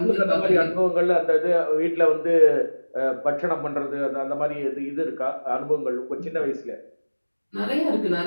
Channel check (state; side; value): inverted; both; correlation -1.00